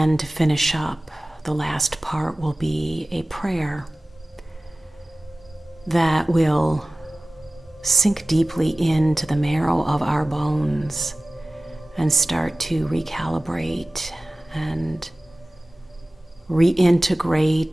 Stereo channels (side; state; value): both; normal; correlation 0.97